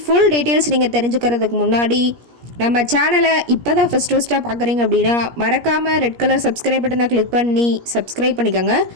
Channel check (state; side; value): late; left; 17 ms